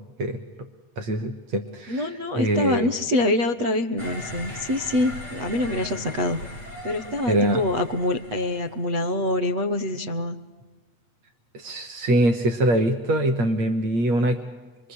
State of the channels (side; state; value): left; late; 8.2 ms